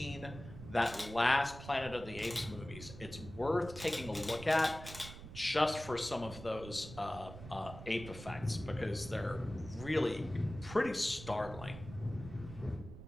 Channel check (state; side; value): noise; right; rumble, 13 dB below the sound